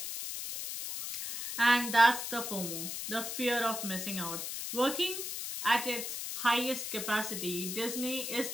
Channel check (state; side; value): noise; left; hiss, 5 dB below the sound